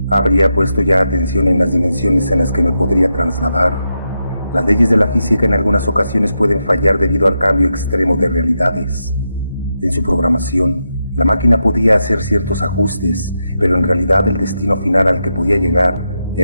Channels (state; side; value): inverted; both; correlation -0.85